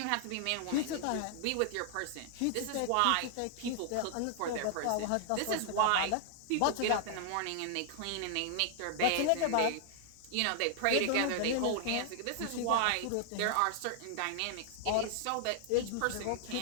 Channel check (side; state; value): both; different; correlation -0.01